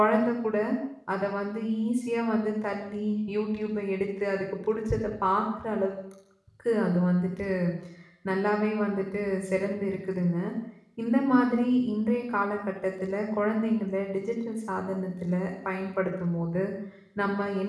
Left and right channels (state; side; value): identical; both; correlation 1.00